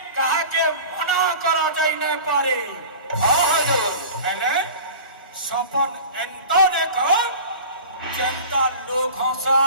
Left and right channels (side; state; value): both; inverted; correlation -0.37